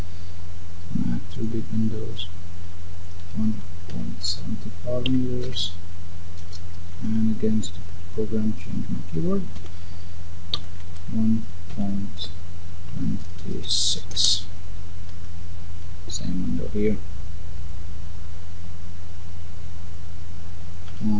I have two big windows. 1.75 meters. And against the program, change my keyboard. 1.26. Same window here.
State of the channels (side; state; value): both; identical; correlation 1.00